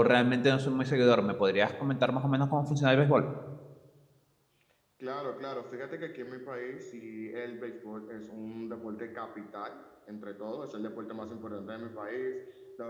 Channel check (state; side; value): identical; both; correlation 1.00